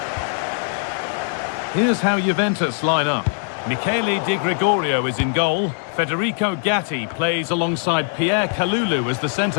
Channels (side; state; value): right; silent; 59 dB below the other